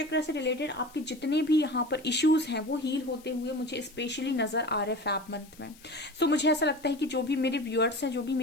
से रिलेटेड आपके जितने भी यहाँ पर इश्यूज हैं वो हील होते हुए मुझे स्पेशली नजर आ रहे फैब मंथ में। सो मुझे ऐसा लगता है कि जो भी मेरे व्यूअर्स हैं, जो भी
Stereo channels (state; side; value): noise; left; hiss, 24 dB below the sound